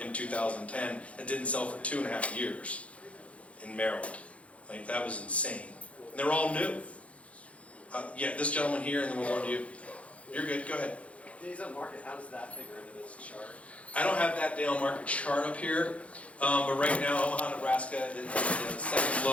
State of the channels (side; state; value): right; late; 0.064 ms